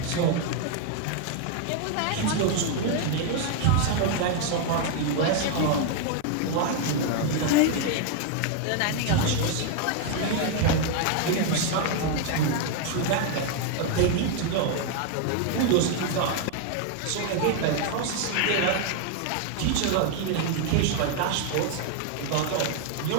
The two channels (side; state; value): both; different; correlation 0.00